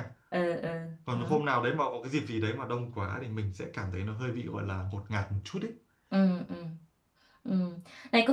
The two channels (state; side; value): identical; both; correlation 1.00